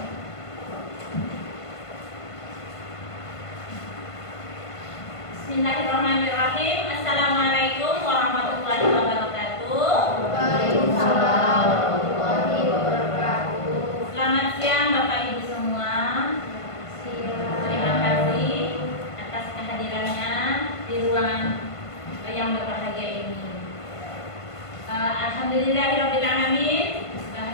Bismillahirrahmanirrahim. Assalamualaikum warahmatullahi wabarakatuh. Waalaikumsalam warahmatullahi wabarakatuh. Selamat siang Bapak Ibu semua. Terima kasih atas kehadirannya di ruangan yang berbahagia ini. Alhamdulillahirrahmanirrahim.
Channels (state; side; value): late; right; 1.5 ms